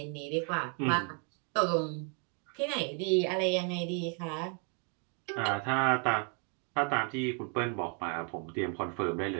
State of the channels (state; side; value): quieter; left; 39.4 dB